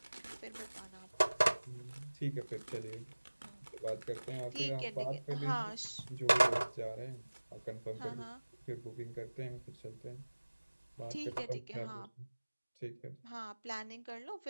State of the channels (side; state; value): both; inverted; correlation -1.00